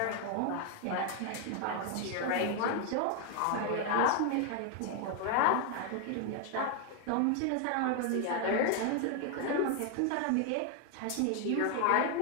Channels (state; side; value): different; both; correlation 0.00